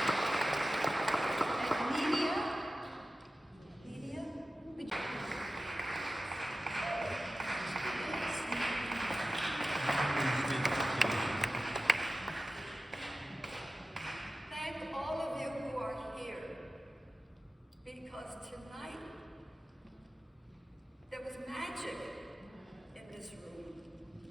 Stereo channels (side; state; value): both; normal; correlation 0.94